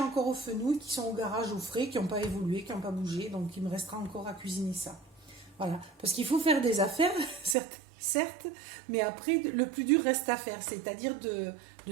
encore aux fenouils qui sont au garage au frais, qui n'ont pas évolué, qui n'ont pas bougé. Donc il me restera encore à cuisiner ça. Voilà. Parce qu'il faut faire des affaires, certes, mais après, le plus dur reste à faire. C'est-à-dire de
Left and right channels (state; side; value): drops out; left; at 7.6 s